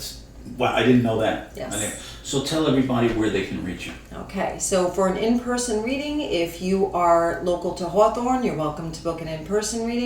wow, I didn't know that. Yes. So tell everybody where they can reach you. Okay, so for an in-person reading, if you are local to Hawthorne, you're welcome to book an in-person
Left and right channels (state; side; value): identical; both; correlation 1.00